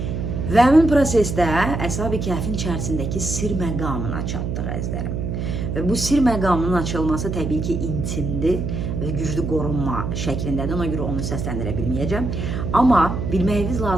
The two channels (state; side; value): noise; right; hum, 3 dB below the sound